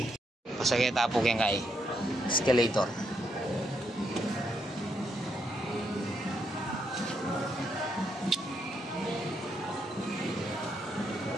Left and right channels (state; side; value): normal; both; correlation 0.77